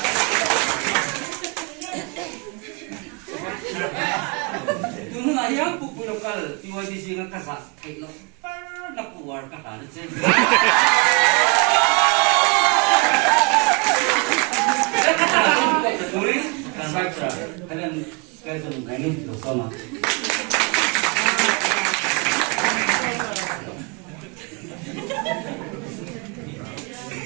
yang buku lokal PYDC dengan kasar, kayak lo, nak keluar kata aja. Sai tra, kalian kalian tu nangin tu sama.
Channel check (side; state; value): left; quieter; 30.9 dB